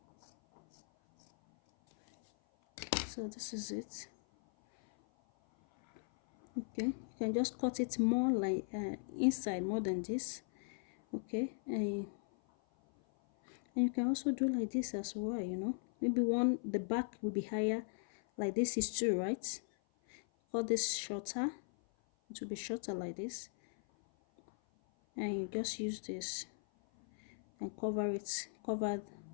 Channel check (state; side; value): silent; right; 52 dB below the other